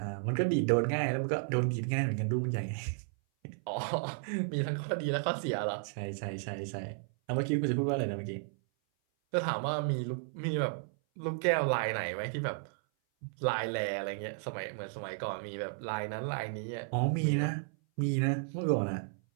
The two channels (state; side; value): silent; left; 56 dB below the other